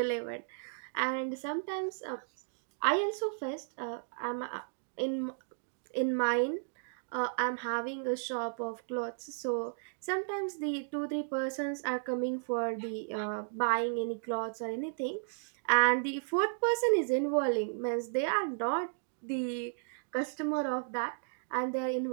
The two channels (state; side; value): silent; left; digital silence